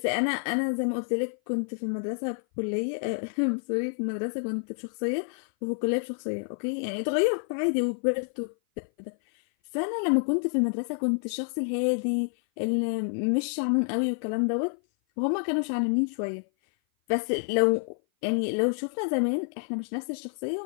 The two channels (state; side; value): silent; right; 56 dB below the other